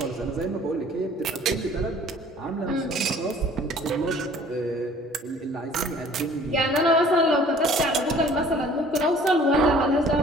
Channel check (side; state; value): both; normal; correlation 0.52